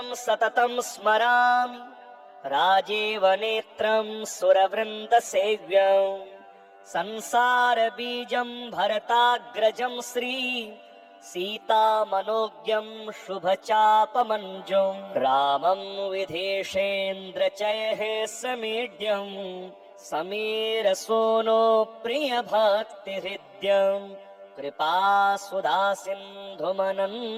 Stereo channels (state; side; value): identical; both; correlation 1.00